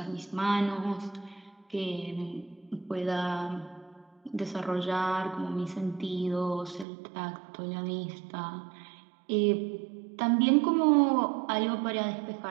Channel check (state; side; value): drops out; left; at 6.9 s